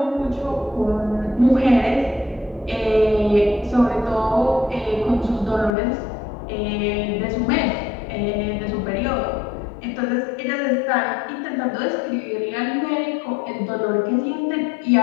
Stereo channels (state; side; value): drops out; right; at 5.7 s